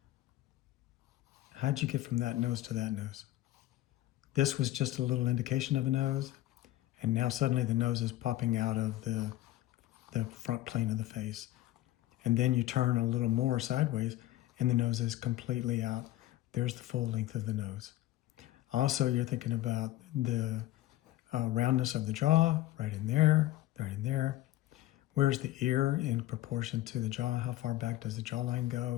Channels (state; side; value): quieter; right; 15.5 dB